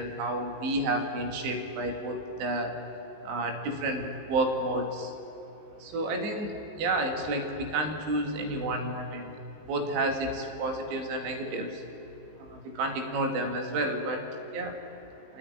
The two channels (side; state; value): left; late; 19 ms